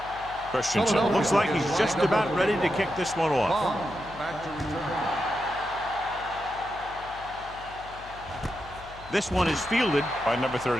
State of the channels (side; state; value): left; noise; hum, 18 dB below the sound